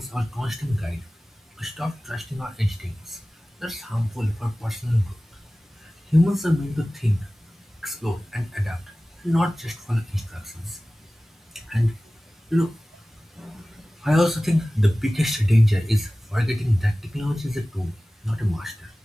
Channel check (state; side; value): normal; both; correlation 0.97